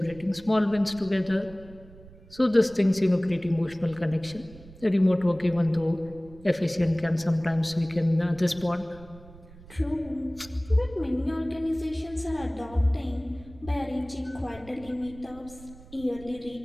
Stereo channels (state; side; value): noise; right; rumble, 20 dB below the sound